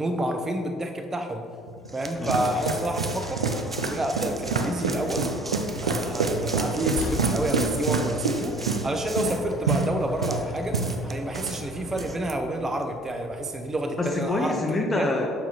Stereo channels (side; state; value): both; normal; correlation 0.51